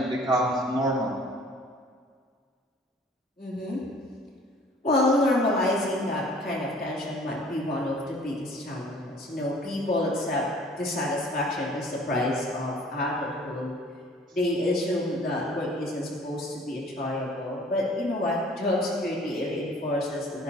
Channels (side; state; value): both; normal; correlation 0.52